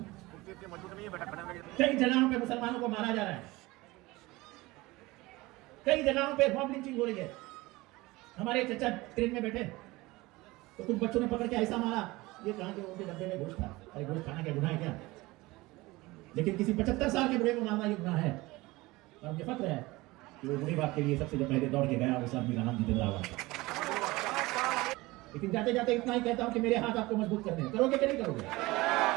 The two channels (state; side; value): quieter; left; 21.0 dB